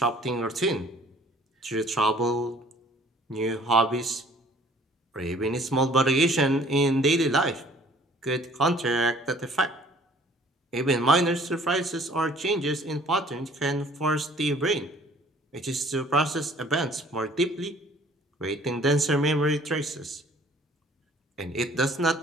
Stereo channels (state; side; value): normal; both; correlation 0.55